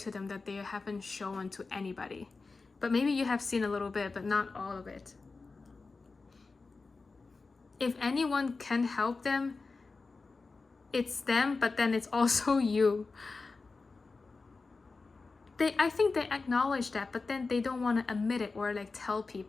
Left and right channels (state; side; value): quieter; right; 4.0 dB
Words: them that they haven't shown to anybody, but maybe you have seen a little bit, but not all of it. If anyone can help them, it's them, but then it's also you. I think they acknowledge that, but then they don't want to admit it or like tell